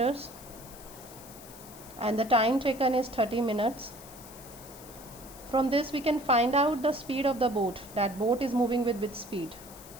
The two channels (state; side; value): noise; left; hiss, 18 dB below the sound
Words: and the time taken is 30 minutes. From this we can find out the speed of the boat. That boat is moving with which speed?